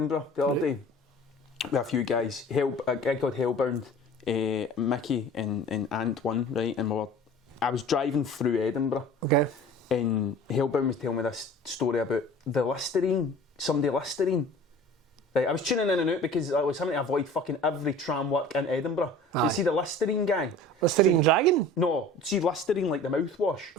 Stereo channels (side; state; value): both; normal; correlation 0.43